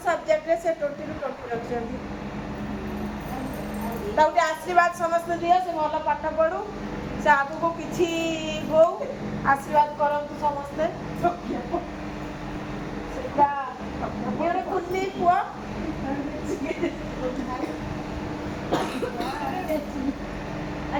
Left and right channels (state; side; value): identical; both; correlation 1.00